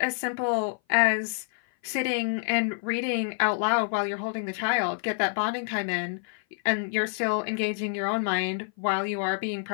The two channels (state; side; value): silent; right; 57 dB below the other